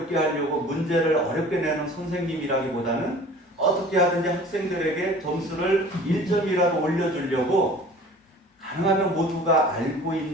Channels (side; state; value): both; normal; correlation 0.45